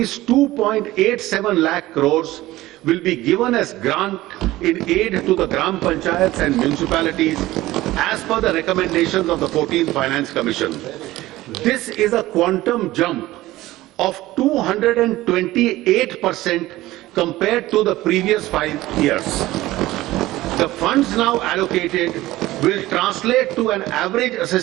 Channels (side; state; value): left; quieter; 17.1 dB